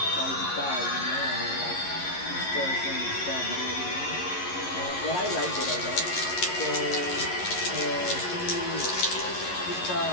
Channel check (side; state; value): right; late; 11 ms